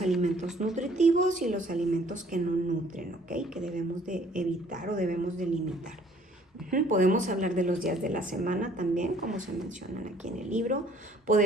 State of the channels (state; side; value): normal; both; correlation 0.58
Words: alimentos nutritivos y los alimentos que no nutren, ¿ok? Que debemos de evitar o debemos de limitar. Podemos hablar de los días de la semana también, como se mencionan aquí en el libro.